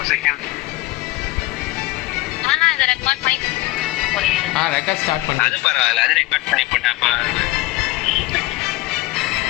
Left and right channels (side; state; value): right; quieter; 19.2 dB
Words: ஆனா இத ரெக்கார்ட் பண்ணி ரெக்கார்ட் ஸ்டார்ட் பண்ணு. அது பரவாயில்ல, அது ரெக்கார்ட் பண்ணி போட்டா